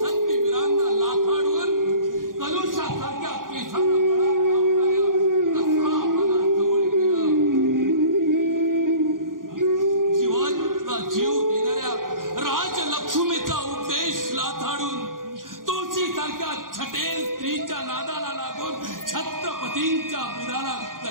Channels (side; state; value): left; late; 0.90 ms